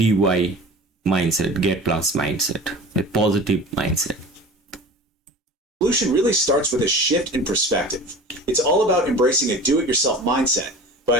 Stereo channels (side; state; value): both; normal; correlation 0.38